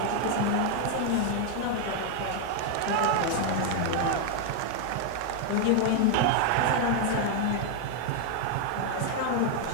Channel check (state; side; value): different; both; correlation 0.00